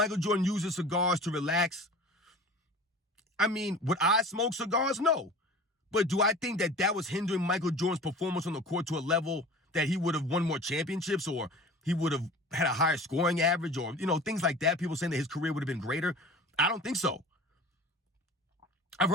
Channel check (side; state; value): both; normal; correlation 0.40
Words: Jordan uses cigars to relax, would I smoke cigars? No. But do I think that was hindering Michael Jordan's performance on the court to a level that he would have won more championships or he would have had a higher scoring average or, things like that? People saying that his career would have been greater. I don't think so. I've